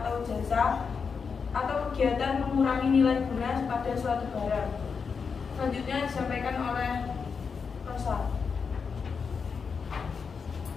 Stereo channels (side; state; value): right; quieter; 5.7 dB